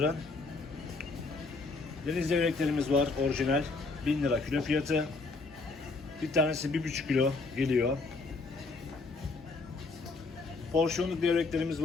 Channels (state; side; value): quieter; right; 3.8 dB